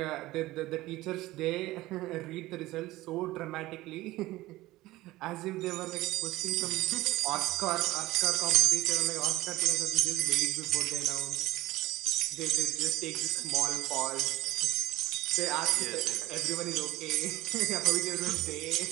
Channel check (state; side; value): quieter; left; 17.8 dB